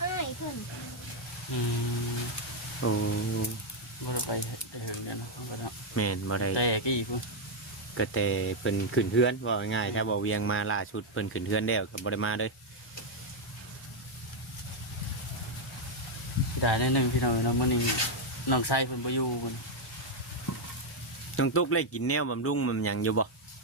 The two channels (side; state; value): both; normal; correlation 0.01